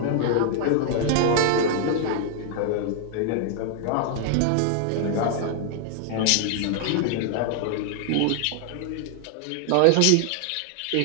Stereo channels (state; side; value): different; both; correlation -0.01